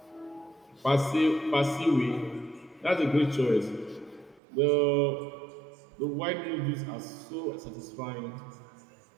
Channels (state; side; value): drops out; left; at 4.4 s